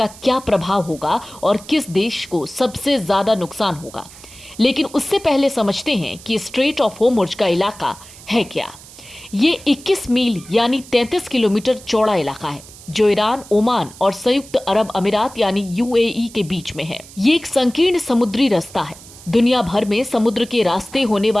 क्या प्रभाव होगा और किस देश को सबसे ज्यादा नुकसान होगा। लेकिन उससे पहले समझते हैं कि स्ट्रेट ऑफ होर्मुज का इलाका है क्या। ये 21 मील यानी 33 किलोमीटर चौड़ा इलाका है जो ईरान, ओमान और संयुक्त अरब अमीरात यानी यूएई के बीच में है। ये एक संकीर्ण समुद्री रास्ता है। दुनिया भर में समुद्र के रास्ते होने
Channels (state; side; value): noise; right; hiss, 19 dB below the sound